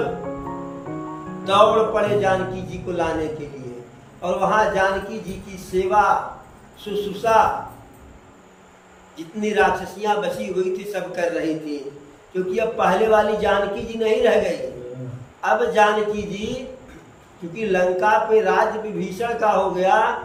दौड़ पड़े जानकी जी को लाने के लिए, और वहां जानकी जी की सेवा शुश्रूषा जितनी राक्षसियां बची हुई थी सब कर रही थी, क्योंकि अब पहले वाली जानकी जी नहीं रह गई। अब जानकी जी क्योंकि लंका पे राज विभीषण का हो गया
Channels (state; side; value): identical; both; correlation 1.00